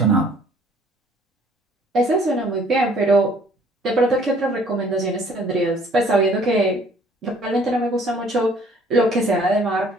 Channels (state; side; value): normal; both; correlation 0.58